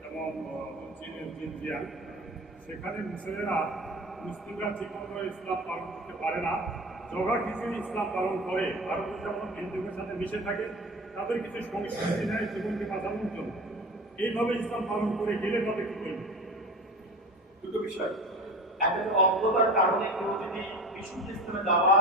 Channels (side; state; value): both; normal; correlation 0.34